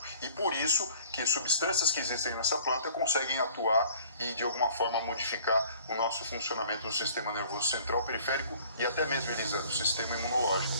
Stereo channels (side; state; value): both; inverted; correlation -0.53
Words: E por isso que substâncias que existem nessa planta conseguem atuar e de alguma forma modificar o nosso funcionamento no sistema nervoso central, periférico e até mesmo, Elisa, do sistema